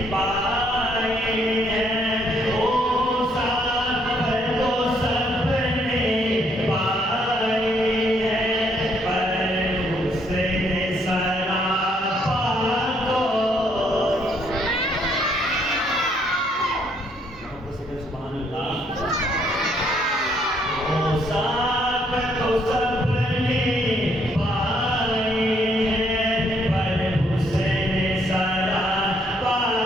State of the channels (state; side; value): normal; both; correlation 0.69